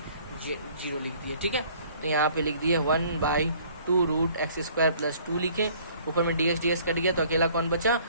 0 लिख दिए। ठीक है, तो यहाँ पे लिख दिए 1/2 रूट एक्स स्क्वायर प्लस 2 लिखे, ऊपर में dx कट गया तो अकेला कौन बचा,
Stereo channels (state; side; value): inverted; both; correlation -0.56